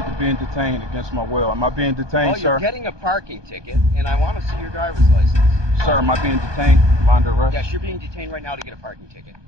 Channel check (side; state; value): left; late; 1.2 ms